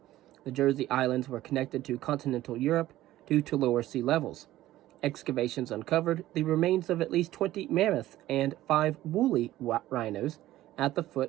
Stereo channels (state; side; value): quieter; left; 15.0 dB